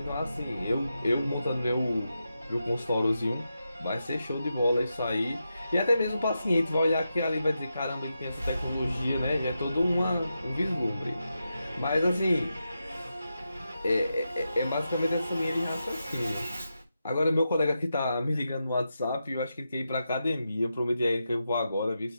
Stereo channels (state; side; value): inverted; both; correlation -0.88